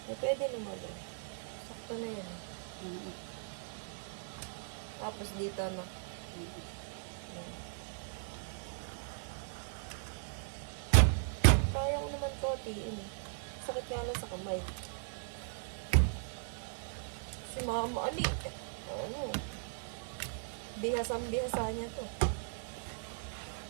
Eh, pwede naman eh. Sakto na yan. Tapos dito na. Yan. Kaya ko naman to, tiin eh. Sakit nga lang sa kamay. Si mama, bihasa niya to.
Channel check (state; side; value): silent; left; digital silence